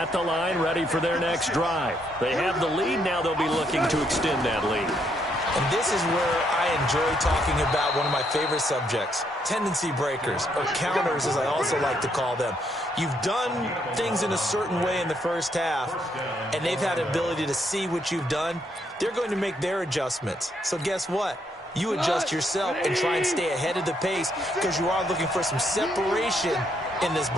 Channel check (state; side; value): normal; both; correlation 0.74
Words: the line, ready for their next drive. They have the lead. Now they'll be looking to extend that lead. And this is where I enjoy talking about one of my favorite subjects, tendency breakers, or counters as I also like to call them. You've done things in a certain way in the first half, and they've had the ability to see what you've done. They're going to make their adjustments. So guess what? You adjust yourself and try and stay ahead of the pace because you are looking for some separation in this